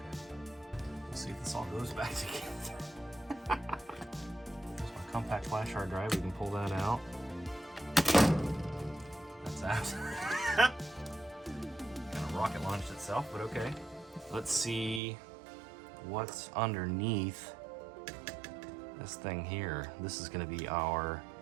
We'll see if this all goes back together. There's my compact flash hard drive. We can pull that out. That's out. Kind of rocket launched itself, but okay. Let's see what's underneath this thing here. This is going to be our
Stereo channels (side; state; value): left; drops out; at 15.0 s